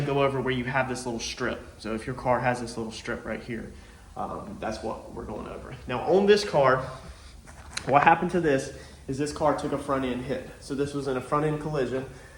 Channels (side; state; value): both; identical; correlation 1.00